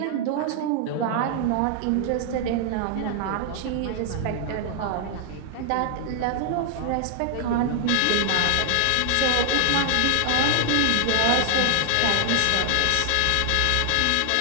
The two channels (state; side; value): different; both; correlation 0.00